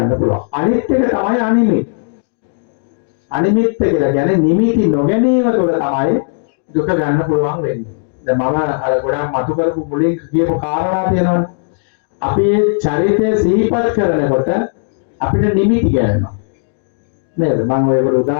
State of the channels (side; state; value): right; silent; digital silence